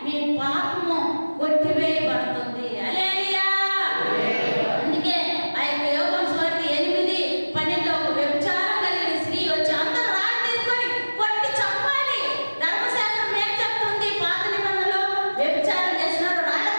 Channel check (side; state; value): both; inverted; correlation -1.00